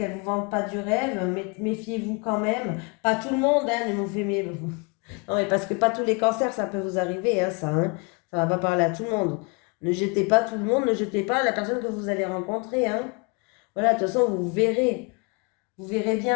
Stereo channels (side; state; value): right; quieter; 32.2 dB